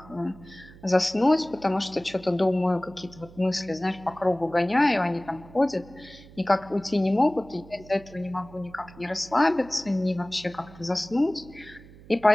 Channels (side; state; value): right; noise; hum, 21 dB below the sound